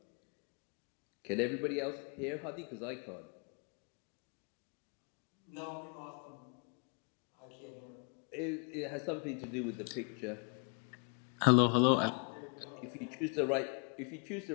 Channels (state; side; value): quieter; right; 39.7 dB